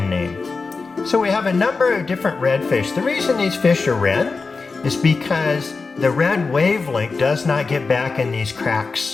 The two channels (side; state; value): right; quieter; 4.3 dB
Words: name. So we have a number of different redfish. The reason these fish are red is because the red wavelength does not get back in these